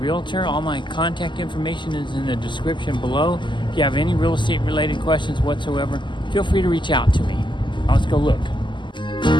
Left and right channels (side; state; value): right; late; 0.23 ms